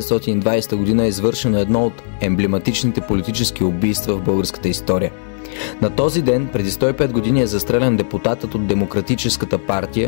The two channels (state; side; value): silent; right; digital silence